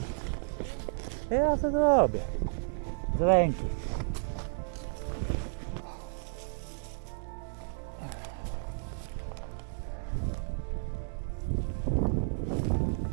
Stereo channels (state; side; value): silent; left; digital silence